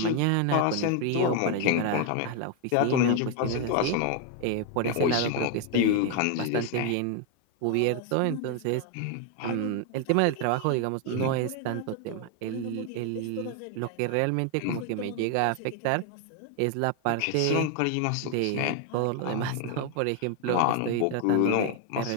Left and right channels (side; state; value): both; different; correlation 0.01